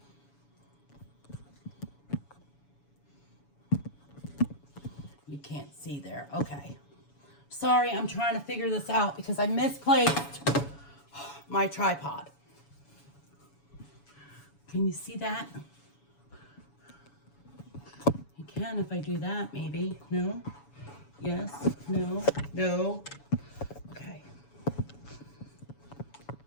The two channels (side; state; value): right; late; 7.1 ms